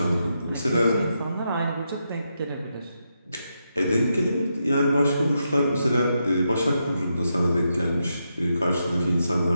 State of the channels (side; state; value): both; inverted; correlation -0.84